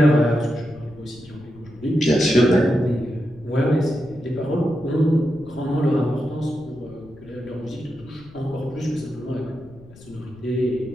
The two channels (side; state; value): left; noise; rumble, 21 dB below the sound